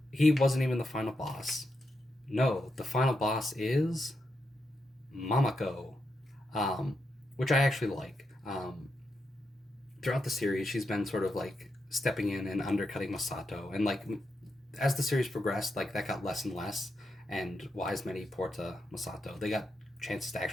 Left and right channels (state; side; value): normal; both; correlation 0.84